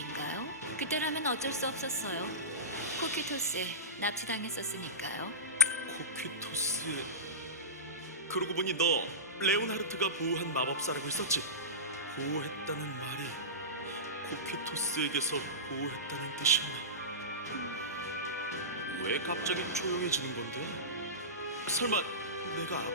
그때라면 어쩔 수 없었어요. 코키토스에 납치당했었으니까요. 코퀴토스의... 그러고 보니 너 레오나르트가 보호한 마법사라고 했었지? 보호했다는 말이 코퀴토스에게서 보호했다는 뜻이었나? 왜 갑자기 조용해지는 건데? 설마 내가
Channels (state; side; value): normal; both; correlation -0.19